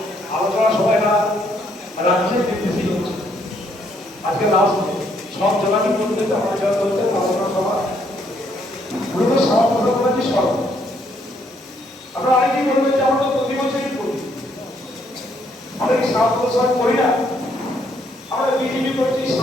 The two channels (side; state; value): both; normal; correlation 0.70